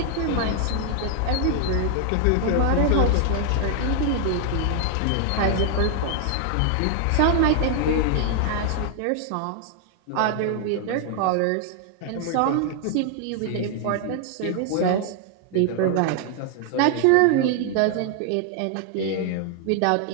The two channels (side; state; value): both; different; correlation 0.00